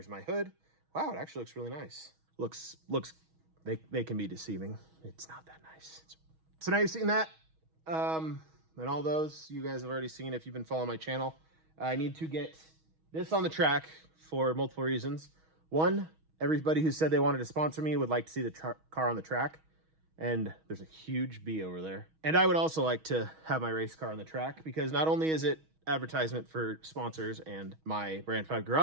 my hood. Wow, it actually looks really nice. Looks, they can be deceiving. It's not that nice. So now you've seen that. And all those you guys have already seen if you've been following my channel. I need to get this on the track for multiple reasons. One, everybody who said they wanted to sponsor me would like to see the car on the track. And there's a huge B over there. And I would also like to have my race car on the track, because not only is it advertisement for sponsors and my Brand 5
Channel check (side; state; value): left; late; 6.3 ms